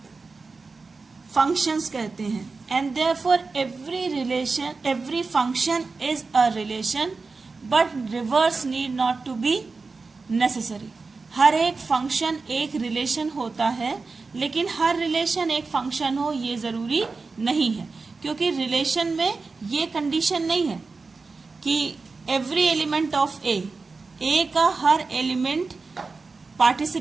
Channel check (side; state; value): left; quieter; 4.2 dB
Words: फंक्शंस कहते हैं. And therefore every function is a relation but reverse need not to be necessary. हर एक फंक्शन एक रिलेशन होता है, लेकिन हर रिलेशन एक फंक्शन हो ये जरूरी नहीं है, क्योंकि रिलेशन में ये कंडीशन नहीं है कि एवरी एलिमेंट ऑफ ए का हर एलिमेंट